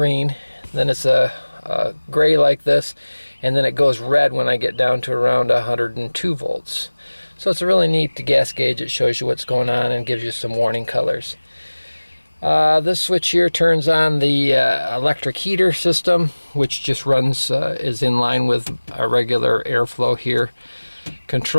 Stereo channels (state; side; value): inverted; both; correlation -1.00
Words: then it's a gray like this, and then it goes red when I get down to around 102 volts. So it's a really neat gas gauge. It shows you what's going on and gives you some warning colors. This switch here turns on the electric heater system, which just runs, is in line with our regular airflow here.